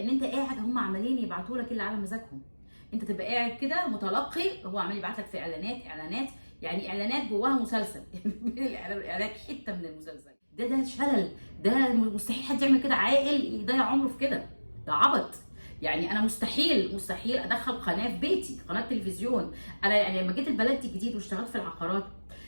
انت قاعد هم عمالين يبعتوا لك اللي على مزاجهم، انت تبقى قاعد كده متلقي، هو عمال يبعت لك في اعلانات، يعني اعلانات جواها مسلسل الاعلانات حته من المسلسل. ده شلل، ده مستحيل حد يعمل كده، عاقل يضيع عمره في كده، ده عبط. يعني انا مستحيل ادخل قناه في بيتي، قناه تلفزيون. انا يعني لما جيت البلد دي جديد واشتغلت في العقارات،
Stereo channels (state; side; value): inverted; both; correlation -1.00